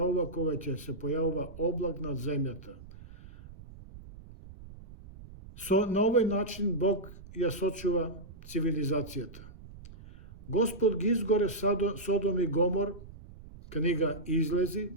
кога ќе се појавува облак над земјата. На овој начин Бог ја сочува цивилизацијата. Господ ги изгоре Содом и Гомор, книга Излези,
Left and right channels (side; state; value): right; noise; rumble, 17 dB below the sound